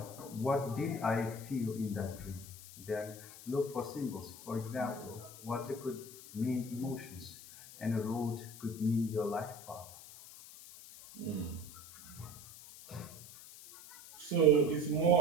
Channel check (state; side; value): noise; left; hiss, 16 dB below the sound